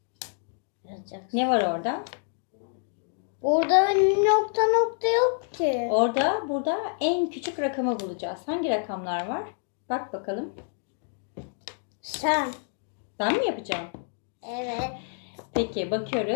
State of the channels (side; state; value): right; silent; 60 dB below the other